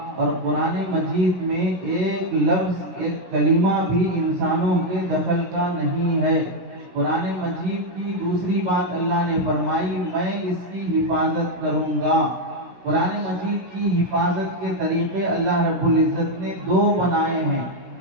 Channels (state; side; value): late; left; 16 ms